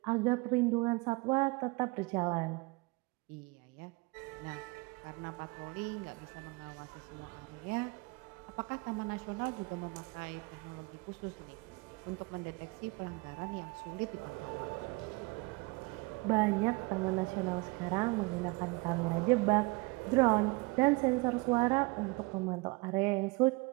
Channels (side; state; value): left; quieter; 26.6 dB